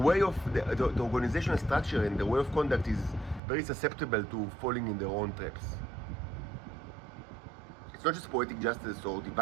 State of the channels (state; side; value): drops out; left; at 3.4 s